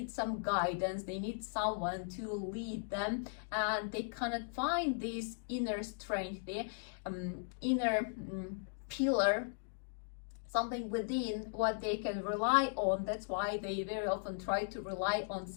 some guidance. They need someone to lead them, and they cannot find this inner strength, their inner pillar, something within what they can rely on. That's why they very often try to rely on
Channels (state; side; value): silent; right; digital silence